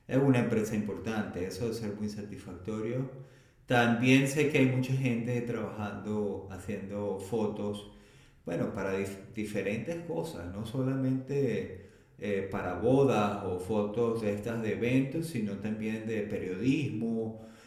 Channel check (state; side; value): identical; both; correlation 1.00